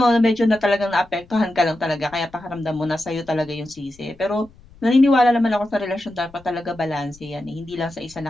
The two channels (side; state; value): left; noise; rumble, 26 dB below the sound